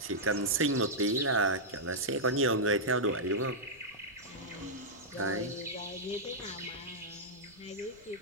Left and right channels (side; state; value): right; noise; rumble, 29 dB below the sound